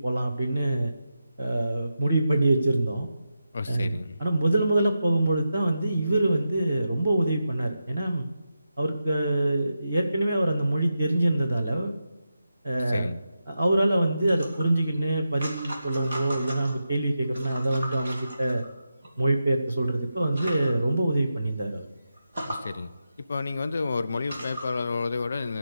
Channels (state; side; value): inverted; both; correlation -0.88